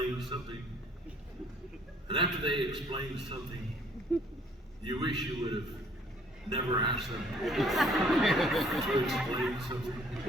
something, and after they explain something, you wish you would have never asked them to explain something?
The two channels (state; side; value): normal; both; correlation 0.60